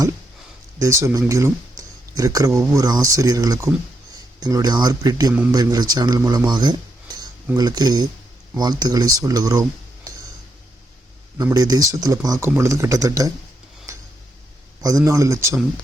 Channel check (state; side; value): normal; both; correlation 0.80